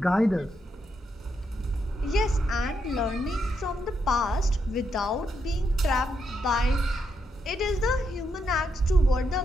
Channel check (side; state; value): both; normal; correlation 0.80